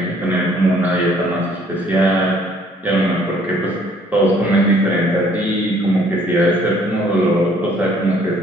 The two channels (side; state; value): both; normal; correlation 0.61